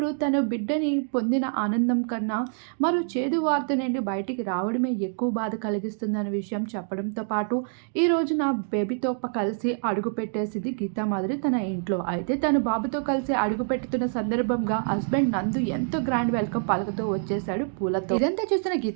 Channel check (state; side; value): silent; left; 61 dB below the other